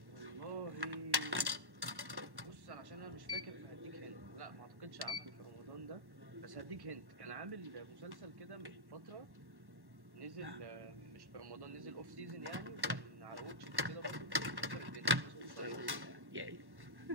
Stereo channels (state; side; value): late; left; 1.1 ms